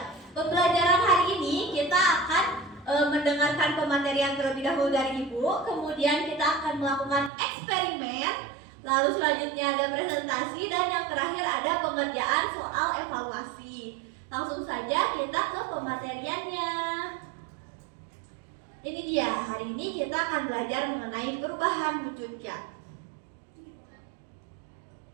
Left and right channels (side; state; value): left; drops out; at 7.3 s